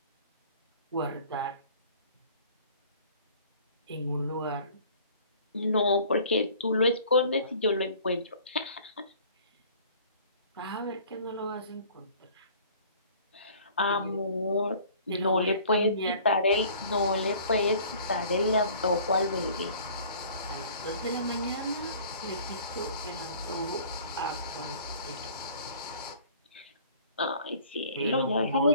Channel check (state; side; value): inverted; both; correlation -0.50